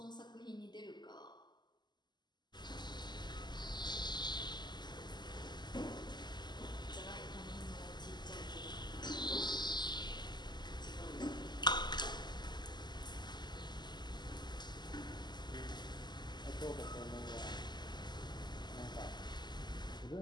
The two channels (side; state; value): right; late; 0.21 ms